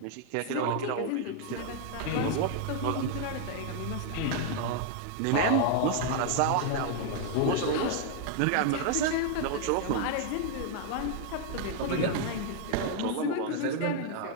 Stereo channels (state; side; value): different; both; correlation 0.00